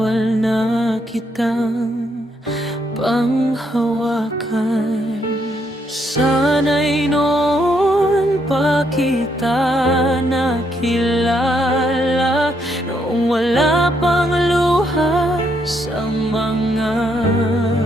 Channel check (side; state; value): both; normal; correlation 0.74